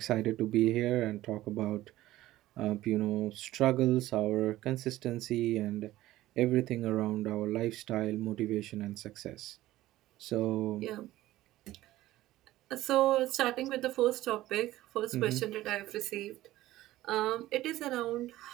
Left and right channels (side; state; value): left; quieter; 15.8 dB